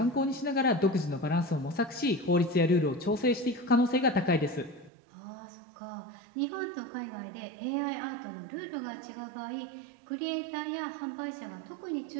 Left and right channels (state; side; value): drops out; left; at 4.9 s